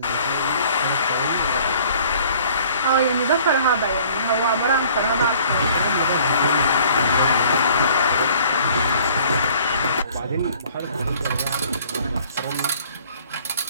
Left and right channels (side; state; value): both; inverted; correlation -0.54